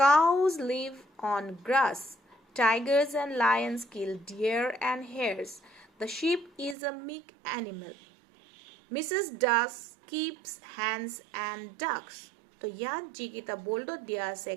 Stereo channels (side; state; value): left; drops out; at 6.8 s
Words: Cows live on grass. Tigers and lions kill deer and hares. The sheep is a meek animal. Mrs. Duck keeps hens and ducks. তো ইয়াত যিকেইটা boldত দিয়া আছে